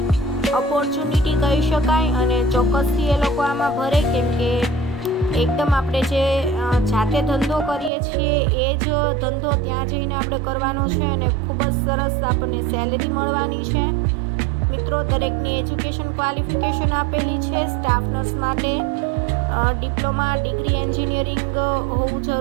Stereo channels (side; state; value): left; drops out; at 7.9 s